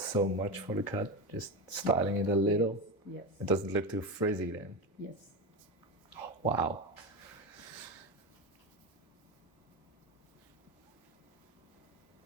so much for the cut, just styling it a little. Yes. It doesn't look too frizzy then. Yes. Wow.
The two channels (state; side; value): normal; both; correlation 0.19